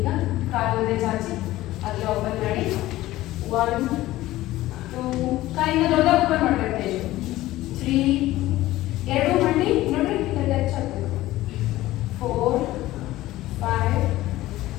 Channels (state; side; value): quieter; right; 16.4 dB